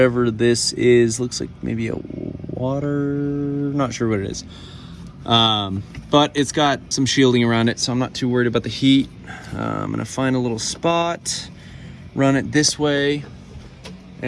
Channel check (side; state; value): both; identical; correlation 1.00